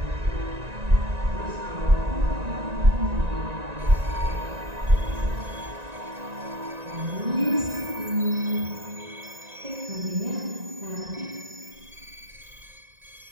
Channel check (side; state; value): left; late; 1.9 ms